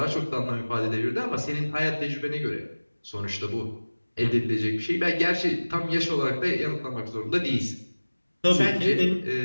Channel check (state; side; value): inverted; both; correlation -1.00